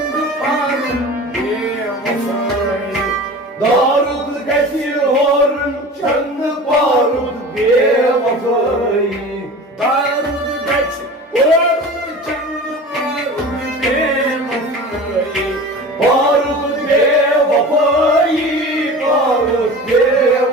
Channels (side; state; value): both; normal; correlation 0.36